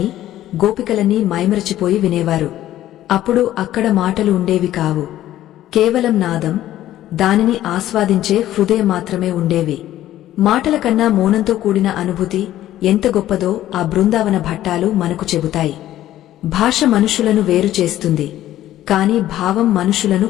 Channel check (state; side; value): quieter; right; 13.4 dB